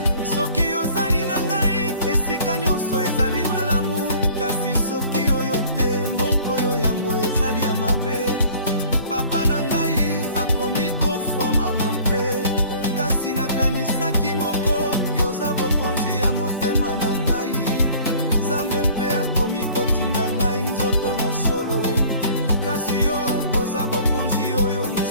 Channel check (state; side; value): inverted; both; correlation -0.50